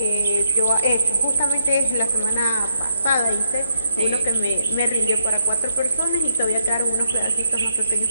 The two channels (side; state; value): both; inverted; correlation -0.78